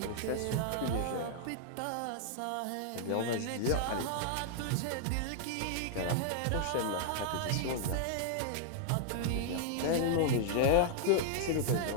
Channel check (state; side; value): different; both; correlation -0.01